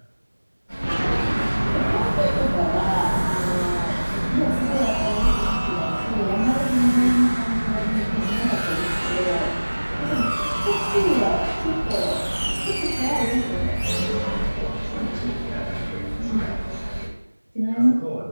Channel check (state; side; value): inverted; both; correlation -1.00